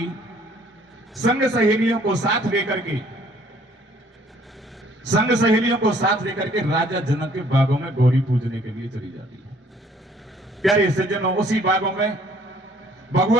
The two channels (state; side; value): normal; both; correlation 0.60